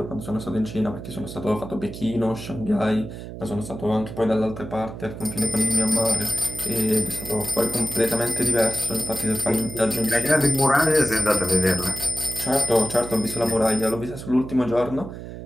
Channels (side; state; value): right; noise; hum, 11 dB below the sound